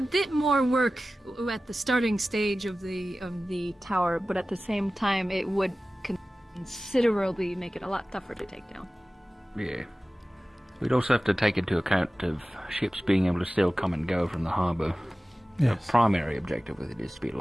bit more work at the starting stage of the tower, but at the same time, it would considerably make it a lot tougher to take down. Yeah. We'd also have to take into account of ships being able to still come and go from the harbour. Yes. The primary objective with it is to be a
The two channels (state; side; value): normal; both; correlation 0.96